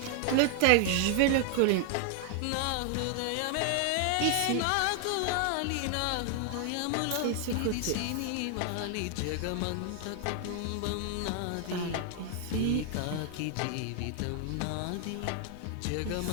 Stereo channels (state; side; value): different; both; correlation 0.00